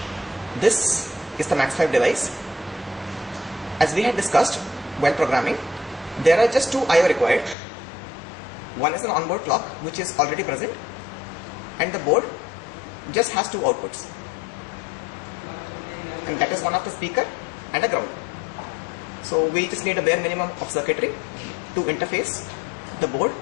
This is the Max5 device. As we had discussed while programming, there are just two I/O required. One is an onboard clock which is already present, and the board just has two outputs, and that is one of the speaker and a ground. So we just need a bare minimum of circuitry to interface the board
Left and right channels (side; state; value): right; drops out; at 7.6 s